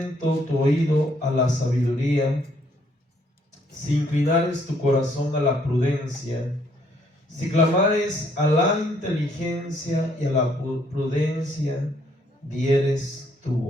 tu oído a la sabiduría, si inclinares tu corazón a la prudencia, si clamares a la inteligencia y a la prudencia, dieres tu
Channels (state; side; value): normal; both; correlation 0.68